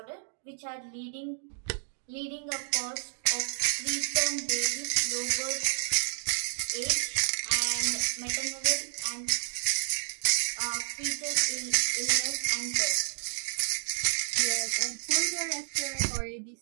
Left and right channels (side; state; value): left; silent; digital silence